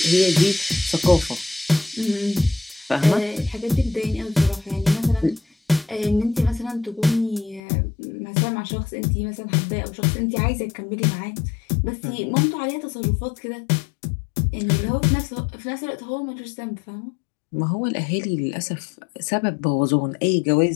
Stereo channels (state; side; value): drops out; right; at 7.6 s